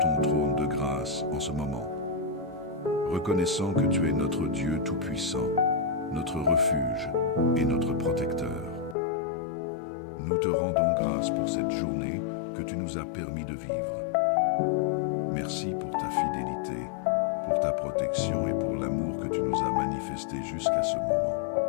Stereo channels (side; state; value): right; drops out; at 9.0 s